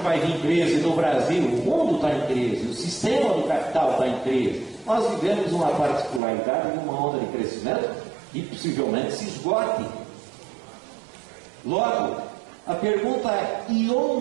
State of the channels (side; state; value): left; drops out; at 6.2 s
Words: vai vir crise no Brasil. O mundo está em crise, o sistema do capital está em crise. Nós vivemos uma particularidade de uma onda de crescimento que possivelmente se esgote. Logo, a pergunta é: e